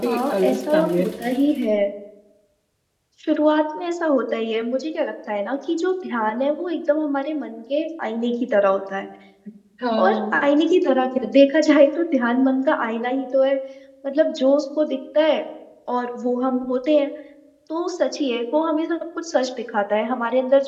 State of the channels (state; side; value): identical; both; correlation 1.00